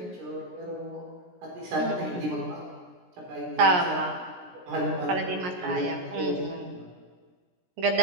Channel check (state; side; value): late; left; 17 ms